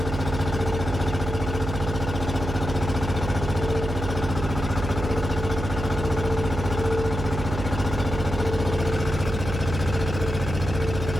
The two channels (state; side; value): noise; right; hum, 4 dB below the sound